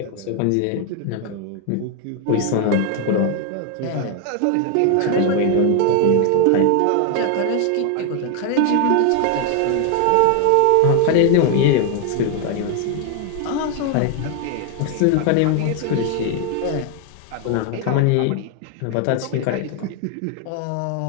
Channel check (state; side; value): different; both; correlation 0.01